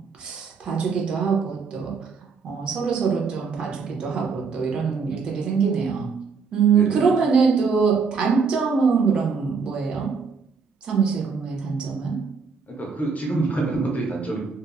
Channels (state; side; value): quieter; left; 5.2 dB